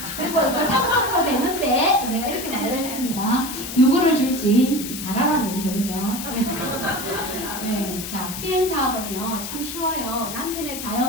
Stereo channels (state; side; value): noise; left; hiss, 8 dB below the sound